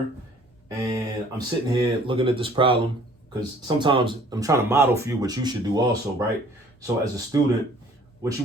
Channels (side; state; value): both; normal; correlation 0.54